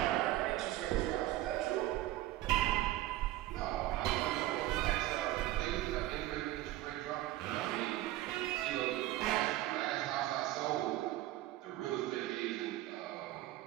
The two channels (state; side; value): quieter; left; 15.7 dB